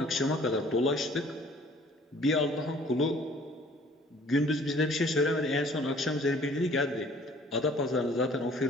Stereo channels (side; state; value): both; normal; correlation 0.55